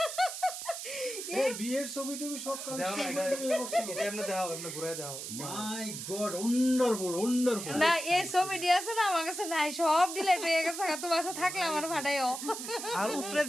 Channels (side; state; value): right; noise; hiss, 7 dB below the sound